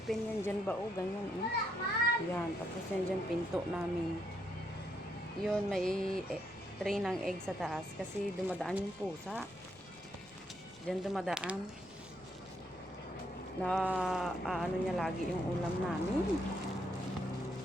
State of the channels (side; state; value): left; noise; rumble, 26 dB below the sound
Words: yan dyan ba o ganyan. Yan, tapos yan dyan pinto namin. Yun, may tray ng egg sa taas kasi dumadaan yung pusa. Dyan dumadaan. Na ano niya lagi yung ulam namin.